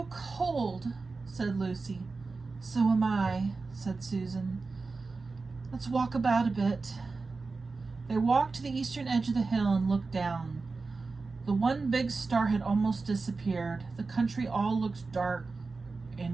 cold, said Lucy. So am I, said Susan. Let's walk about a bit. They walked to the eastern edge of the hill and looked down. The one big star had almost disappeared. The country all looked dark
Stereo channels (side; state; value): left; quieter; 4.0 dB